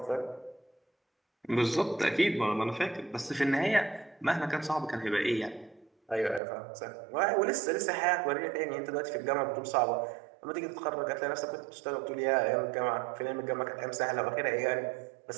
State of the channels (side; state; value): left; drops out; at 6.4 s